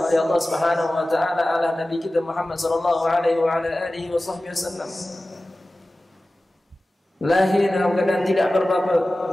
Allah Subhanahu wa taala adalah Nabi kita Muhammad sallallahu alaihi wasallam. Lahir dalam keadaan tidak berbapa,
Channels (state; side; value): normal; both; correlation 0.96